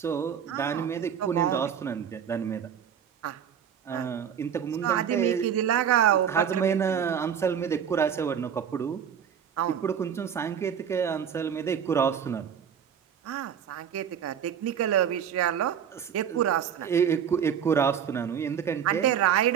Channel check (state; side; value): quieter; left; 8.3 dB